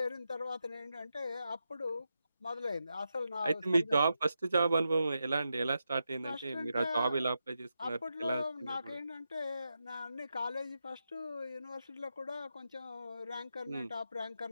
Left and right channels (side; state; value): both; inverted; correlation -0.87